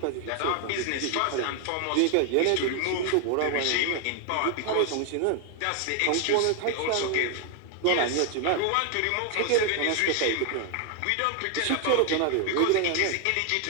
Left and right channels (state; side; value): different; both; correlation 0.00